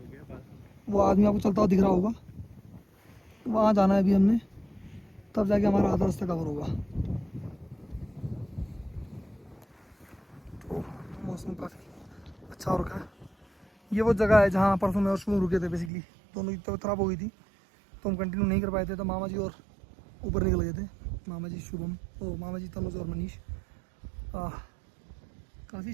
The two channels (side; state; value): left; drops out; at 15.9 s